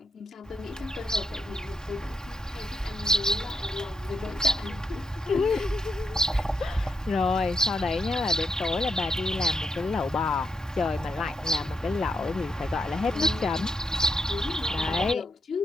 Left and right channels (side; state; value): both; normal; correlation 0.81